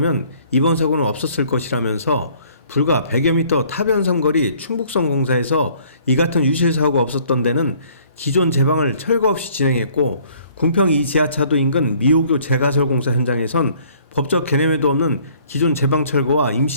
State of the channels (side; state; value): both; inverted; correlation -0.58